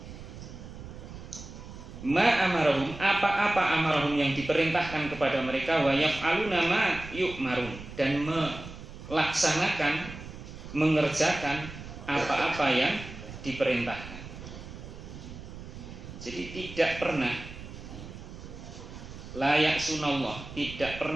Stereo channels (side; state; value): right; noise; rumble, 13 dB below the sound